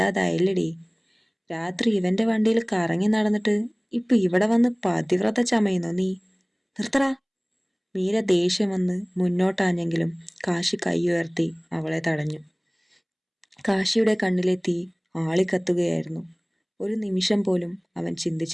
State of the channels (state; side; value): identical; both; correlation 1.00